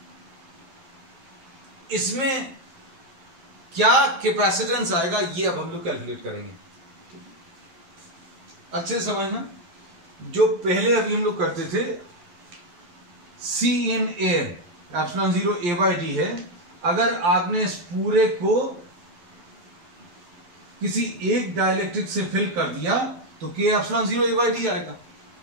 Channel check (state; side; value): late; left; 12 ms